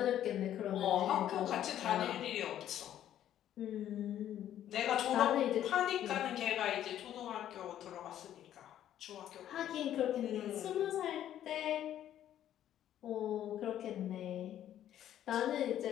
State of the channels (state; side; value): quieter; right; 11.4 dB